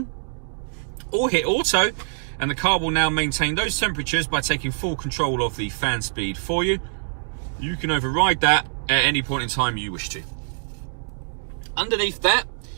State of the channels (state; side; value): silent; left; digital silence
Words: or hit auto, and the car will now maintain those temperatures by taking full control of the fan speed for you. You can override that at any point in time you wish to. Underneath that,